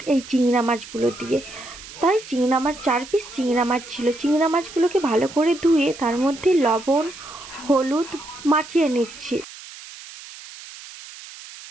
এই চিংড়া মাছগুলো দিয়ে। তাই চিংড়া মাছ 4 পিস চিংড়া মাছ ছিল। চিংড়া মাছগুলোকে ভালো করে ধুয়ে তার মধ্যে লবণ হলুদ মাখিয়ে নিচ্ছি।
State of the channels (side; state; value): right; noise; hiss, 16 dB below the sound